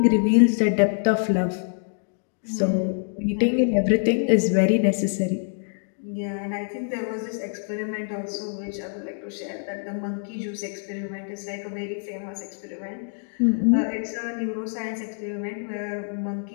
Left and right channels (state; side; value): silent; right; 61 dB below the other